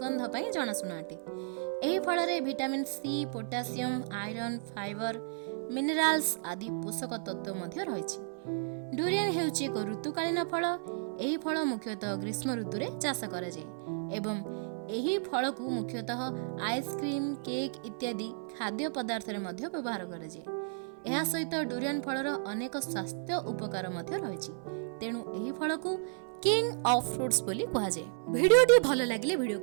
पई जनाशुना अटे। एही फल रे vitamin C, potassium, iron, fibre, minerals आदि पोषक तत्व मध्य रहिछि। डुरियन हेउछि एक ऋतुकालीन फल। एही फल मुख्यतः ग्रीष्म ऋतु रे चाष करा जाय एवं एही फल को मुख्यतः आइसक्रीम, केक इत्यादि खाद्य पदार्थ रे मध्य व्यवहार करा जाय। एहा सहित डुरियन फलर अनेक स्वास्थ्य उपकार मध्य रहिछि। तेणु एही फल को किंग ऑफ फ्रूट्स बोली कहा जाय। वीडियोटी भल लागिले वीडियो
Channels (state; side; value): silent; left; 56 dB below the other